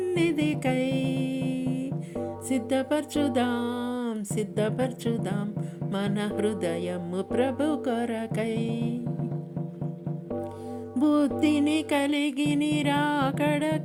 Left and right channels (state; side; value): identical; both; correlation 1.00